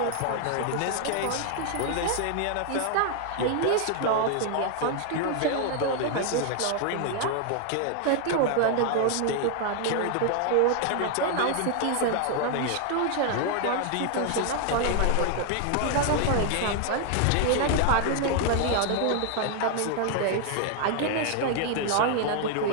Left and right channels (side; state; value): both; different; correlation 0.00